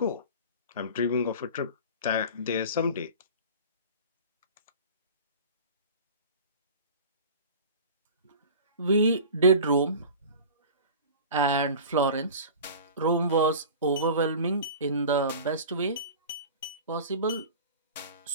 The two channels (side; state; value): both; inverted; correlation -0.38